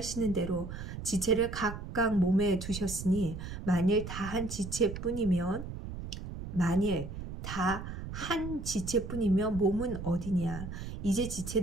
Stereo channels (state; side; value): noise; right; rumble, 8 dB below the sound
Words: 대로 지체를 각각 몸에 두셨으니 만일 다 한 지체뿐이면 몸은 어디냐. 이제